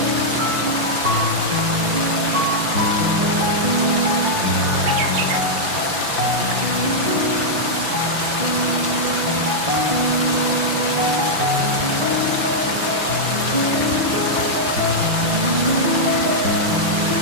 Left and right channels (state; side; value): late; left; 6.0 ms